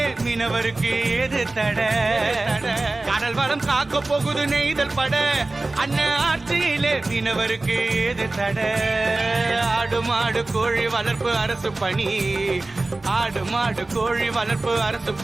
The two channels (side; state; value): left; quieter; 3.1 dB